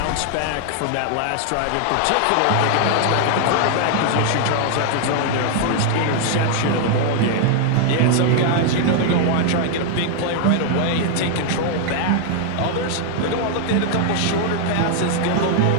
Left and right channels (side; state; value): both; different; correlation 0.00